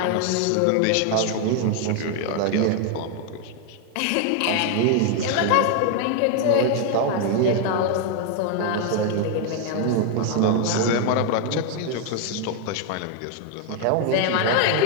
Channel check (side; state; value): both; different; correlation 0.00